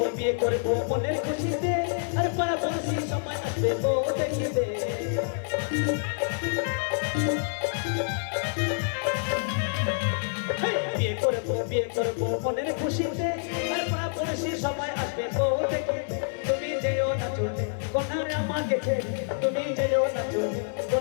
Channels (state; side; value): silent; right; digital silence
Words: বিয়ে করবো মনের খুশিতে আর পাড়া পড়শি সবাই আসবে বউ দেখিতে বিয়ে করবো মনের খুশিতে আর পাড়া পড়শি সবাই আসবে বউ দেখিতে তুমি যেও না চলে কোথায় আমাকে ছেড়ে তুমি যেও না চলে